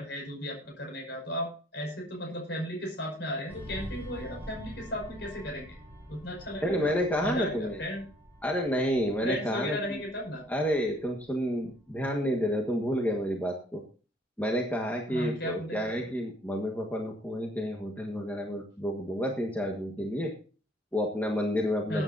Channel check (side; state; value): both; normal; correlation 0.60